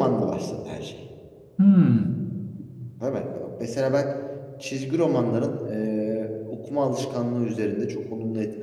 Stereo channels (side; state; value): both; identical; correlation 1.00